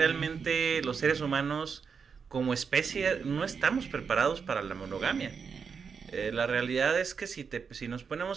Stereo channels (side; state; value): left; quieter; 6.0 dB